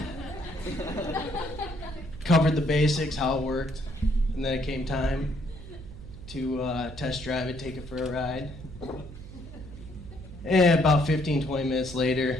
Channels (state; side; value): noise; right; hum, 14 dB below the sound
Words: Covered the basics, how it worked, and then it came time to test drive it, take it for a ride. And about 15-20 minutes